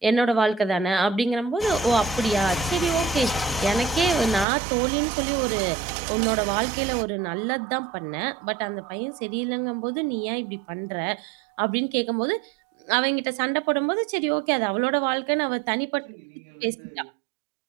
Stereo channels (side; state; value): left; drops out; at 4.5 s